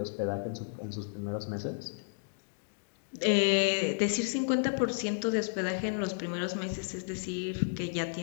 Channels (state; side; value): silent; right; digital silence